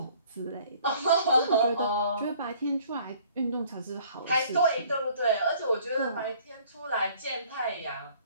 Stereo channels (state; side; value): inverted; both; correlation -0.56